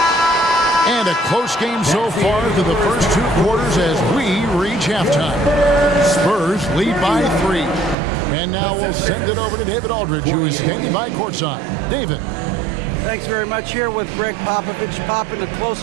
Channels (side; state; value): left; drops out; at 8.0 s